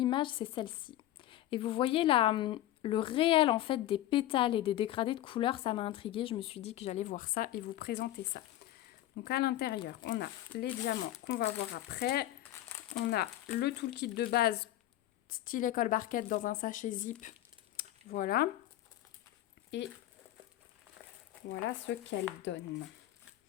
c'est celle-ci. Et vous voyez le réel en fait des pétales et des dégradés de couleurs, ça m'a intriguée. Je me suis dit que j'allais voir ça et vous présenter ça. Donc à l'intérieur, on a les diamants qu'on va voir après. On a le toolkit de base style école barquette dans un sachet zip. Voilà. Et voilà ce qu'elle donne.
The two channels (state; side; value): quieter; right; 14.0 dB